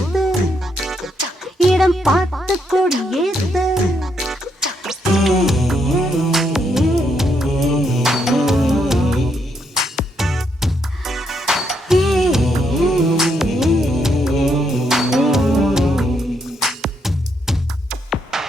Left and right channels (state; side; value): normal; both; correlation 0.77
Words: இடம் பார்த்து கொடியேத்து